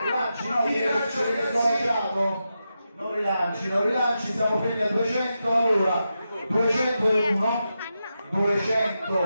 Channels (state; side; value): inverted; both; correlation -0.88